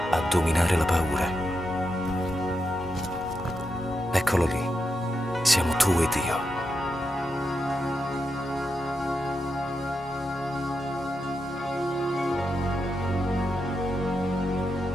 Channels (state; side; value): normal; both; correlation 0.85